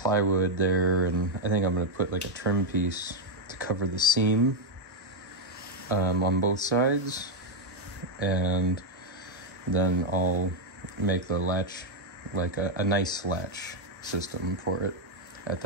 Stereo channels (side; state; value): both; normal; correlation 0.02